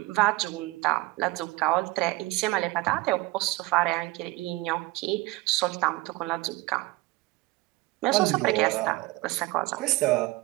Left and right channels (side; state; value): left; quieter; 20.9 dB